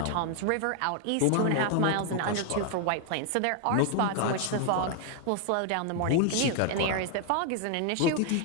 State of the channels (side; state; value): both; different; correlation 0.00